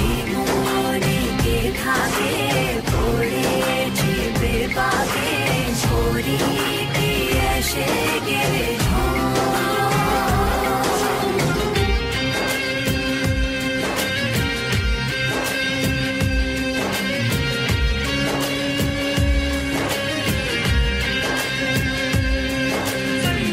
মনে কে থাকে পড়েছি বেপাকে ছড়ি কি এসে গেলে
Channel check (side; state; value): both; identical; correlation 1.00